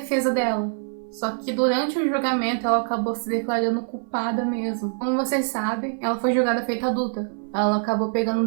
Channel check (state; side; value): silent; left; 62 dB below the other